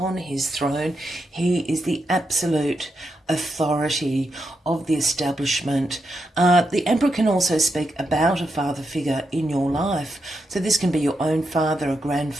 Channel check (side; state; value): both; normal; correlation 0.84